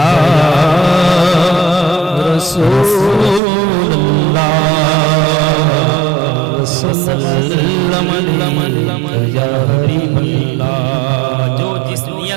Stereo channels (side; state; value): left; drops out; at 3.4 s